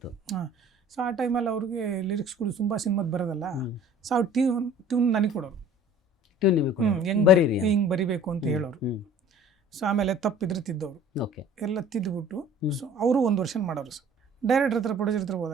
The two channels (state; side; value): normal; both; correlation 0.49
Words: ಸೊ ಆ ಟೈಮಲ್ಲಿ ಅವ್ರಿಗೆ ಲಿರಿಕ್ಸ್ಗಳು ತುಂಬ ಸಿನಿಮಾದ ಬರೋದಲ್ಲ. ಸೊ ಅವ್ರು ಟ್ಯೂನ್ ನನಗೆ ಕೊಡೋರು, ಹಿಂಗೆ ಬರಿಬೇಕು ಅಂತ ಹೇಳೋರು. ಸೊ ಆಮೇಲೆ ತಪ್ಪಿದ್ರೆ ತಿದ್ದವರು ಎಲ್ಲ ತಿದ್ದುಬಿಟ್ಟು, ಸೊ ಅವರು ಒಂದು ವರ್ಷ ಮಾಡೋರು. ಸರ್ ಡೈರೆಕ್ಟರ್ ಹತ್ರ ಪ್ರೊಡ್ಯೂಸರ್ ಹತ್ರ